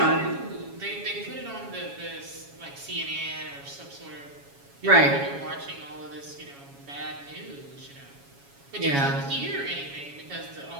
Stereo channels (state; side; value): late; left; 7.2 ms